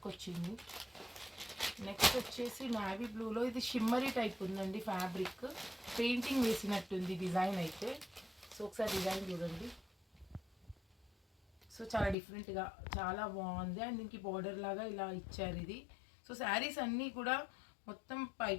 వచ్చింది. నెక్స్ట్ వచ్చేసి నావీ బ్లూలో ఇది షిమ్మరీ టైప్ ఉందండి ఫ్యాబ్రిక్, పెయింటింగ్ వేసినట్టుంది డిజైన్ అయితే. సో ఒకసారి డిజైన్ చూడండి. సో చాలా డిఫరెంట్గా చాలా బాగుంది. అండ్ దీనికి బార్డర్ లాగా ఇలా ఇచ్చారు ఇది. సో శారీస్ అన్నీ కూడా మొత్తం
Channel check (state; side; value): drops out; right; at 12.2 s